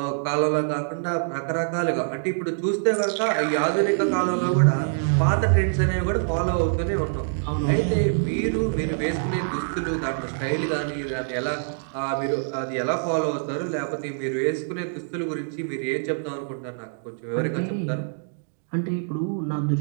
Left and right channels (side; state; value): left; silent; digital silence